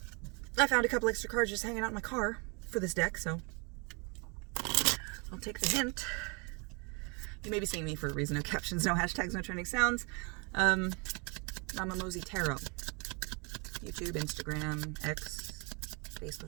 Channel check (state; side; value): quieter; left; 32.6 dB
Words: I found a couple extra cards just hanging out in my car for this deck, so I'll take the hint. You may be seeing me for a reason. No captions, no hashtags, no trending sounds. Mama Mosey Tarot. YouTube, Instagram, X,